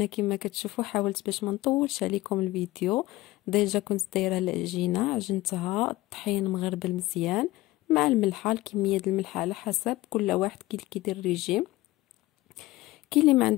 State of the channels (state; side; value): quieter; right; 18.1 dB